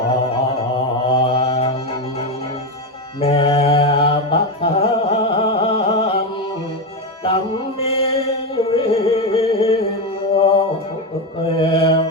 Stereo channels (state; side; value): normal; both; correlation 0.12